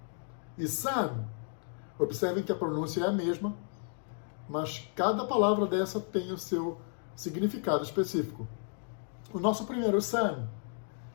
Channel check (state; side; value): silent; right; 56 dB below the other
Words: e sun. Observem que a pronúncia é a mesma, mas cada palavra dessa tem o seu significado específico. O nosso primeiro sun